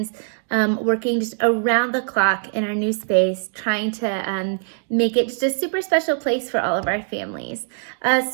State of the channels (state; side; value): silent; left; digital silence